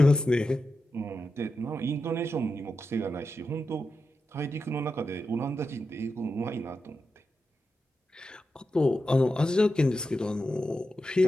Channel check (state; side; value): normal; both; correlation 0.89